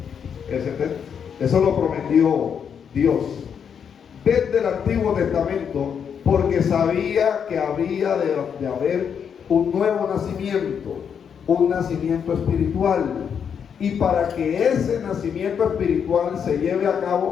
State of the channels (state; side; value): quieter; right; 7.4 dB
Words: texto. Eso lo prometió Dios desde el Antiguo Testamento, porque sabía que había de haber un nuevo nacimiento, un nacimiento espiritual. Y para que ese nacimiento espiritual se lleve a